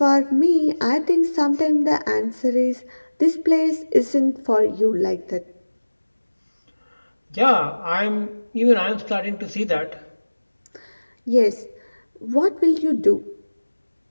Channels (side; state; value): both; inverted; correlation -1.00